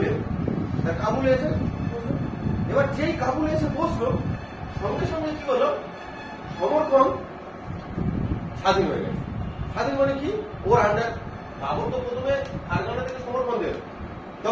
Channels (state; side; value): identical; both; correlation 1.00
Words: কাবুলে এসে এবার যেই কাবুলে এসে বসলো সঙ্গে সঙ্গে কি হলো সমর্পণ স্বাধীন হয়ে গেছে। স্বাধীন মানে কি ওর আন্ডার বাবর তো প্রথমে ফারগানা থেকে সমর্পণ দিল